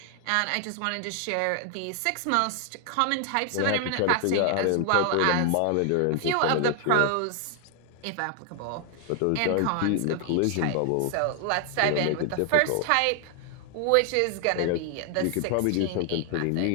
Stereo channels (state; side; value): different; both; correlation 0.00